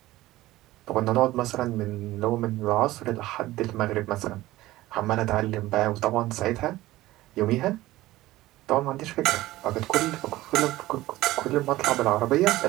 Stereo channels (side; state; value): left; quieter; 16.9 dB